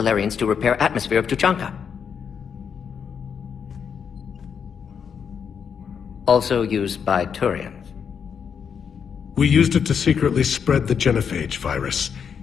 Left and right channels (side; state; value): right; quieter; 7.1 dB